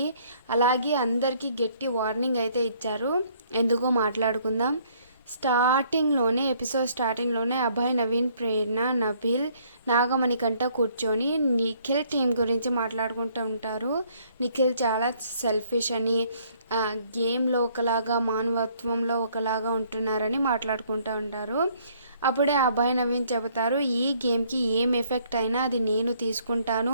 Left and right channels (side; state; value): both; inverted; correlation -0.64